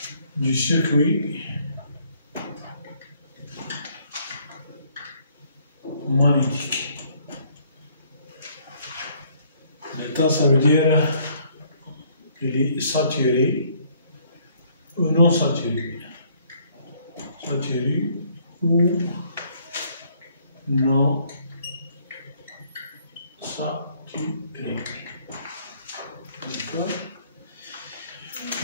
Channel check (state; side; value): inverted; both; correlation -0.64